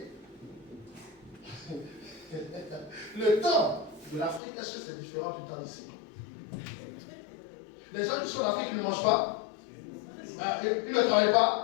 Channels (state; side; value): drops out; right; at 4.4 s